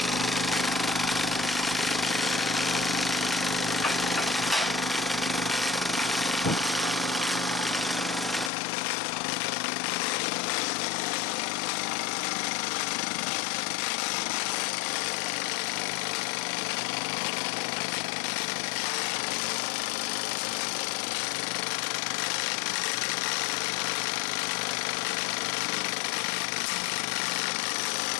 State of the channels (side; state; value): right; drops out; at 8.5 s